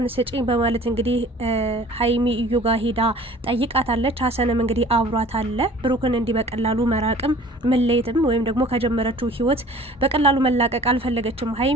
ስጭኝ በማለት እንግዲህ ሀይሚ እዩ ጋር ሂዳ ጠይቃታለች። ሀሰንም እንግዲህ አብሯት አለ። ብሩክን እንዲህ በቀላሉ መራቅም መለየትም ወይም ደግሞ ከጀመረችው ህይወት በቀላሉ መላቀቅ አልፈለገችም።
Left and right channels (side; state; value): both; normal; correlation 0.48